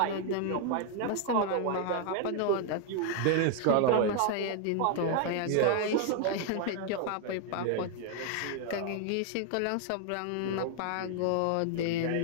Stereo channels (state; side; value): different; both; correlation 0.00